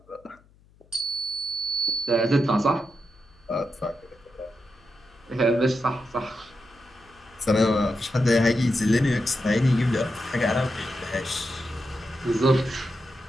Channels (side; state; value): left; noise; hum, 29 dB below the sound